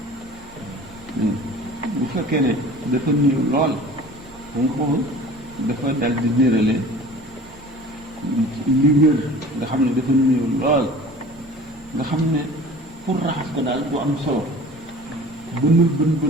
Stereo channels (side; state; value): both; normal; correlation 0.43